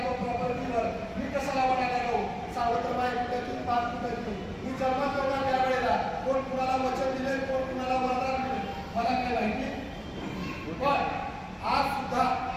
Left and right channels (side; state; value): both; identical; correlation 1.00